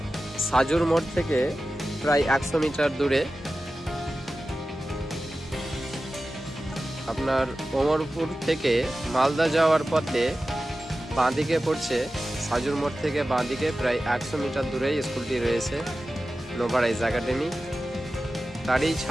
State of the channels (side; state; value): both; normal; correlation 0.94